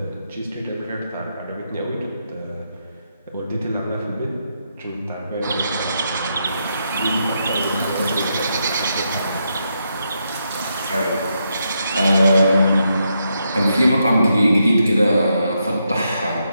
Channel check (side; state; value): both; inverted; correlation -0.81